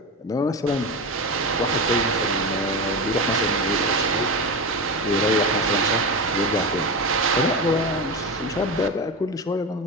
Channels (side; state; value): both; normal; correlation 0.21